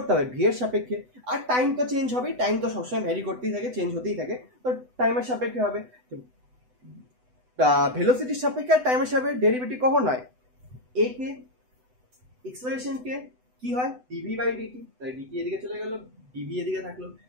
হবে ভি এর সাপেক্ষে। আর টাইম তো চেঞ্জ হবেই, টাইম তো সবসময় ভ্যারি করতেই থাকে, চেঞ্জ হতেই থাকে, তো টাইমের সাপেক্ষে হবে। ভেলোসিটির সাপেক্ষে আর টাইমের সাপেক্ষে ডেরিভেটিভ কখন হয়, এ কে এক্সপ্রেশন কে কি হয় ডিভি বাই ডিটি, তাই ডিটি এদিকে চলে গেল, ডিভি এদিকে থাকলো,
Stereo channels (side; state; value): left; late; 8.0 ms